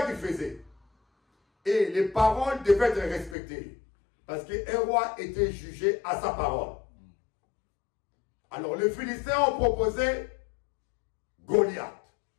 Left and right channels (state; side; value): drops out; right; at 3.4 s